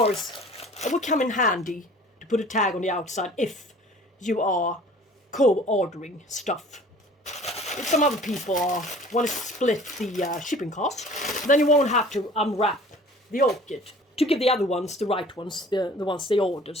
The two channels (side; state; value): both; normal; correlation 0.48